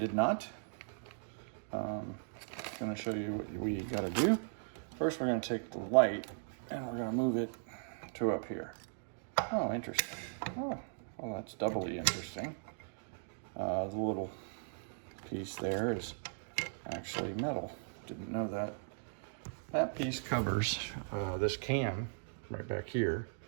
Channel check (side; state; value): left; silent; digital silence